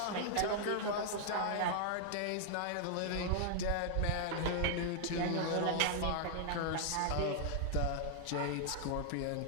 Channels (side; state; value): both; different; correlation -0.01